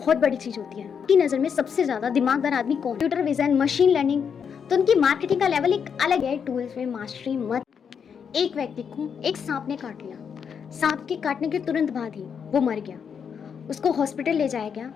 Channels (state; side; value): quieter; right; 7.0 dB